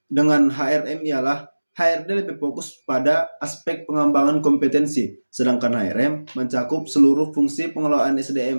dengan HRM ialah HRD lebih fokus pada aspek pengembangan kompetensi, sedangkan HRM mencakup seluruh fungsi pengelolaan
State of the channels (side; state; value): both; inverted; correlation -1.00